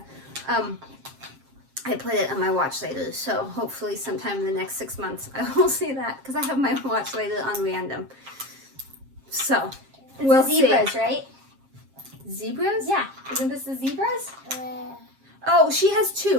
I put it on my watch later, so hopefully sometime in the next 6 months I will see that, because I have my watch later on random. So, we'll see. Zebras, right? Zebras? Yeah. Isn't this the zebras? Oh, she has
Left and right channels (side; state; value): left; late; 7.5 ms